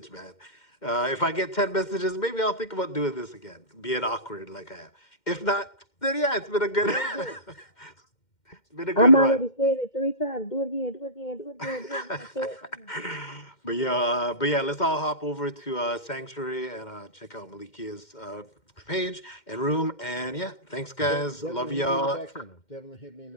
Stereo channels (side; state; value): right; late; 2.1 ms